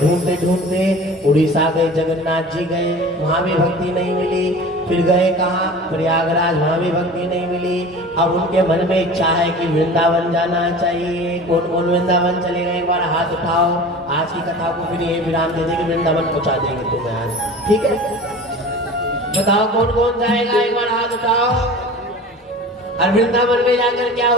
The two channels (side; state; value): both; normal; correlation 0.38